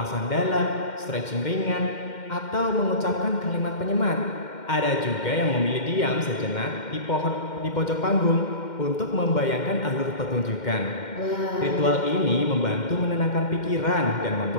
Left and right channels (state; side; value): late; right; 2.1 ms